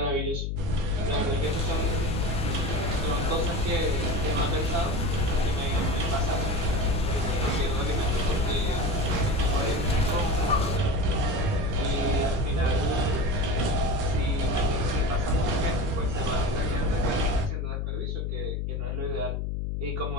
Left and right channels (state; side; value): noise; left; hum, 1 dB below the sound